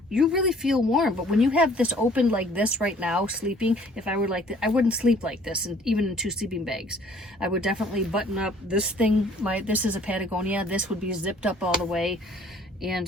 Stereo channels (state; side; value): normal; both; correlation 0.56